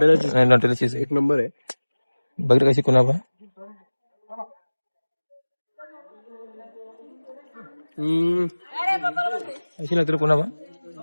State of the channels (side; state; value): both; inverted; correlation -1.00